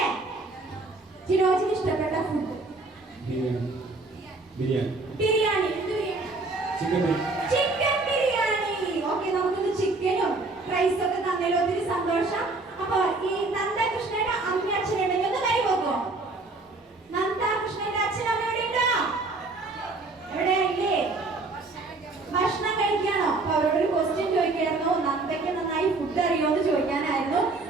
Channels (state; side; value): quieter; left; 3.4 dB